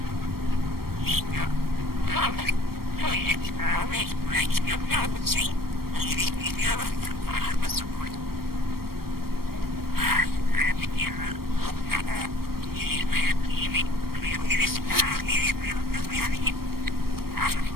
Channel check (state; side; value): late; left; 0.94 ms